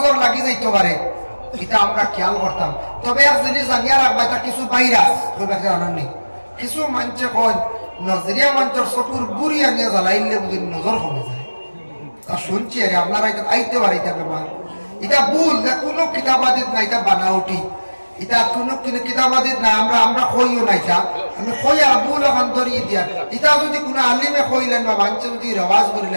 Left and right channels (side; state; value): both; inverted; correlation -1.00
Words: লাগি যাইতে পারে, এটা আমরা খেয়াল করতাম। তবে এক জিনিস জানিয়া রাখবা, এটা কিছু ভাইরাস জানাননি, কিছু মানুষে কয় নজরিয়া মানুষের চকুর গুড়ি আনিয়া জ্বালাইলে বুঝি নজর কমে যায়। তা শুনছি আরে আপনারা এটা আইতে পারে, এটা বেমার, এটা ভুল, কোনো কিতাবাদিত না, এটা বানাউটি, এটা কোনো কিতাবাদিত না, আমরা কইও না, এটা আমি কই আর ভুল এখন ধরিয়ে দিয়া। এটা যদি কোনো আলিমে কইলেন বা মানুষে যদি রেওয়াজ